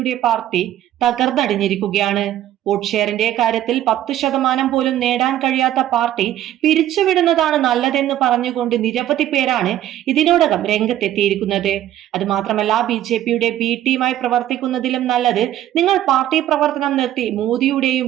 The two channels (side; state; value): left; quieter; 12.5 dB